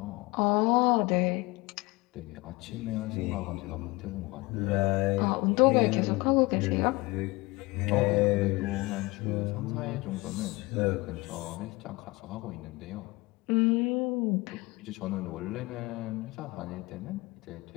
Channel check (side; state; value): right; quieter; 23.2 dB